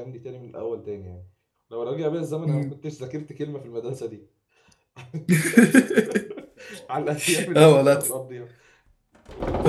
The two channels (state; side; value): identical; both; correlation 1.00